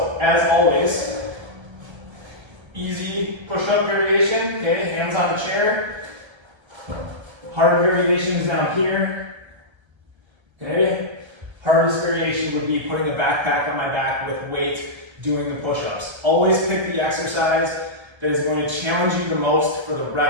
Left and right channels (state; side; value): late; left; 1.3 ms